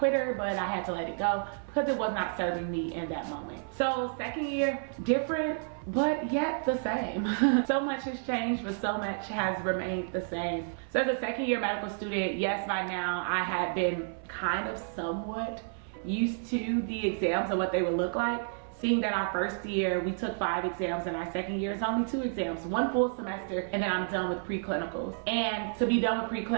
but I had to let it go because it was not serving me in that moment. So second year, different, but yet the same. So much has changed, but so much has remained the same. So as a second year medical student, yes, by now I had been kind of somewhat used to the exams and what they would look like. Seeing that our first year, we took 5 exams, and our second year is only 2 exams, 1 full semester, and then I'm done with preclinicals. And to be done with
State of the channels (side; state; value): left; silent; 57 dB below the other